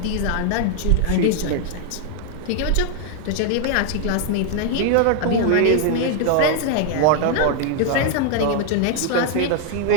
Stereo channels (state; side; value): different; both; correlation 0.00